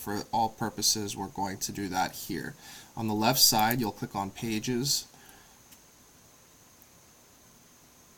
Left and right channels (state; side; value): identical; both; correlation 1.00